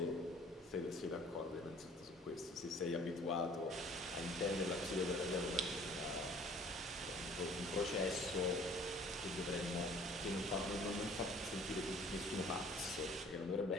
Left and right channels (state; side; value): normal; both; correlation 0.53